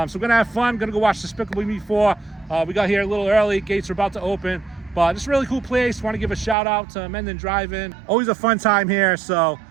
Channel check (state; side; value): drops out; left; at 6.6 s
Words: we're gonna have fun, gonna go watch Despicable Me 4. We got here a little early, gates are about to open. But it's a really cool place. Want to give a shout out to Mendon Drive. Always a fun time here. So,